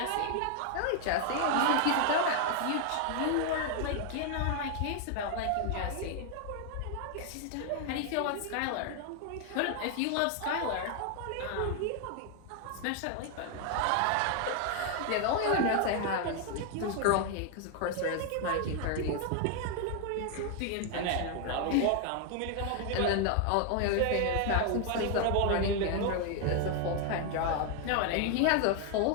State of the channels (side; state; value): both; different; correlation 0.00